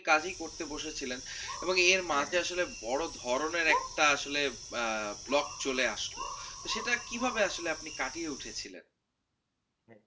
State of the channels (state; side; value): identical; both; correlation 1.00